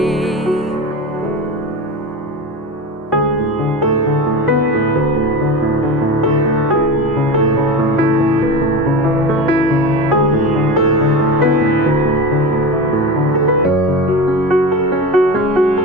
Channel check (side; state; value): both; normal; correlation 0.26